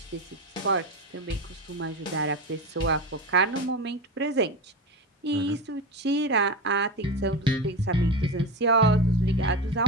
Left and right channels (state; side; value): normal; both; correlation 0.23